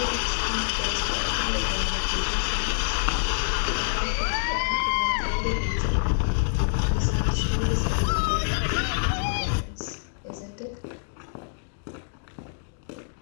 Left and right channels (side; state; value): right; silent; digital silence